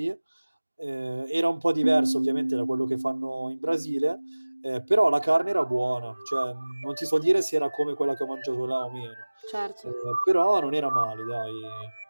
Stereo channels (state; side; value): inverted; both; correlation -1.00